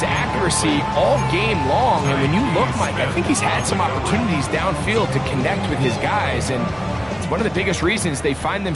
accuracy all game long, and when you look, Mike, I think he's had some opportunities downfield to connect with his guys, and it's one of the biggest reasons they find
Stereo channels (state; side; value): noise; left; rumble, 23 dB below the sound